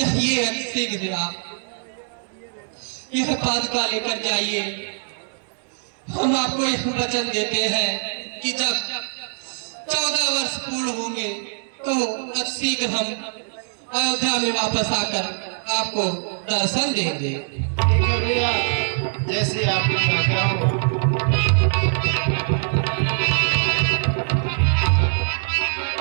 शीघ्र आप, यह पादुका लेकर जाइए। हम आपको यह वचन देते हैं कि जब 14 वर्ष पूर्ण होंगे तो अब शीघ्र हम अयोध्या में वापस आकर आपको दर्शन देंगे। ठीक है भैया, जैसे आपकी आज्ञा हो।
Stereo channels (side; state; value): left; silent; digital silence